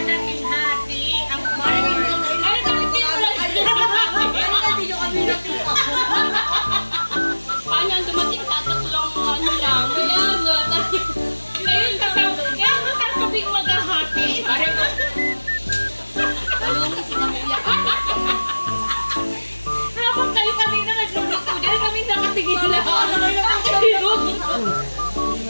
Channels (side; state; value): both; inverted; correlation -1.00